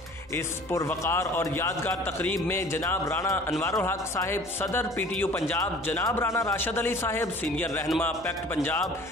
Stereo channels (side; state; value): left; noise; hum, 24 dB below the sound